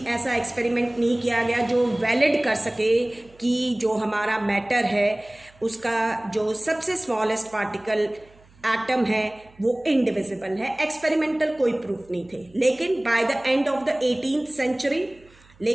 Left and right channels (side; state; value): right; noise; hum, 28 dB below the sound